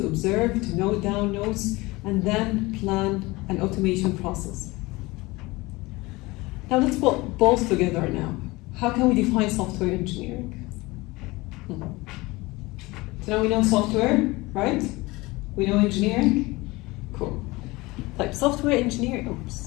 observe, to note down notes, and then plan an automation process. Now let's put both together now. How can we define software engineering? So now we know software, right? We know engineering. Cool. Like software engineering.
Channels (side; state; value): right; quieter; 22.0 dB